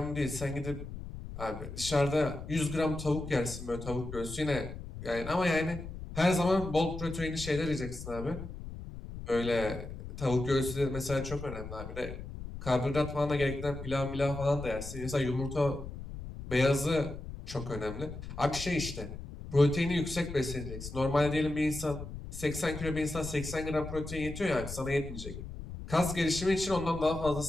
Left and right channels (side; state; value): left; noise; rumble, 10 dB below the sound